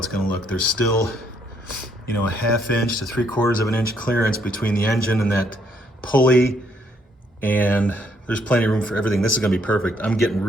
going to look. There's still, you know, a 1/2 inch to 3/4 of an inch clearance between the engine and that pulley, and there's plenty of room for everything. This is going to be perfect. I'm getting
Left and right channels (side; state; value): both; normal; correlation 0.70